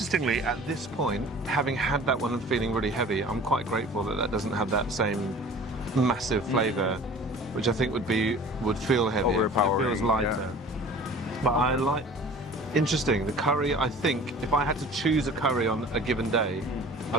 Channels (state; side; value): normal; both; correlation 0.44